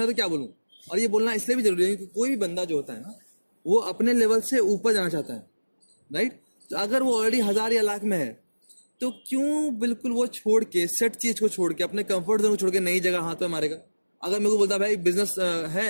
तो क्या बोलूं? और ये बोलना इसलिए भी जरूरी है क्योंकि कोई भी बंदा जो होता है ना, वो अपने लेवल से ऊपर जाना चाहता है, राइट। तो अगर वो ऑलरेडी 1000 या लाख में है तो क्यों बिल्कुल वो छोड़ के, सेट चीज को छोड़ के, अपने कंफर्ट जोन को छोड़ के नई जगह हाथ पे मारेगा? अगर मेरे को बोलता भाई बिजनेस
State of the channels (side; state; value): both; inverted; correlation -1.00